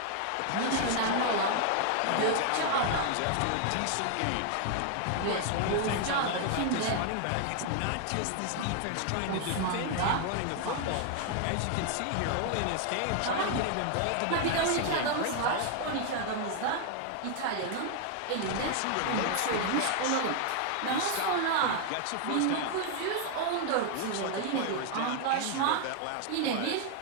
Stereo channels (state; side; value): different; both; correlation 0.00